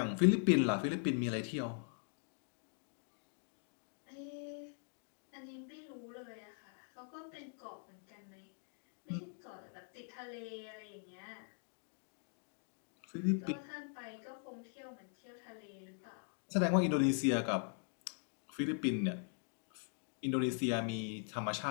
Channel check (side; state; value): right; silent; 50 dB below the other